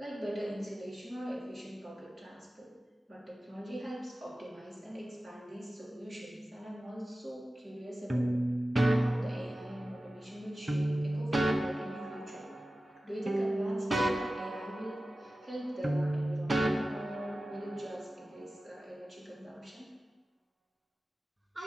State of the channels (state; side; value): normal; both; correlation 0.95